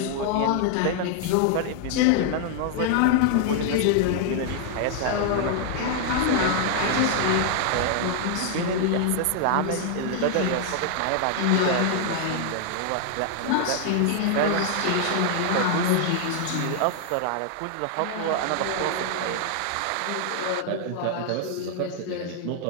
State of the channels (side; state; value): both; different; correlation 0.00